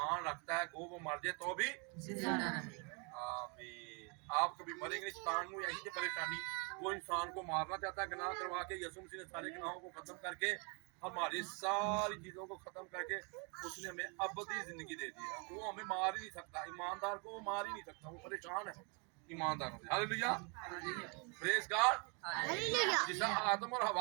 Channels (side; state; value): left; quieter; 34.4 dB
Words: रखता है वो मर जाए तो भी जिंदा रहे। आमीन। आप कभी मरेंगे नहीं। शैतान को यही थी परेशानी, वो इंसान को मारना चाहता है गनाह करवा के। यीशु मसीह ने सारे गुनाहों को खत्म करके, हमारी सारी चीजों को खत्म करके उसने हमें अबदी जिंदगी दे दी है। वो हमें मार ही नहीं सकता, ईमानदार को वो मार ही नहीं सकता, वो परेशान है ईमानदारों से। Hallelujah, praise God. जिस आदम और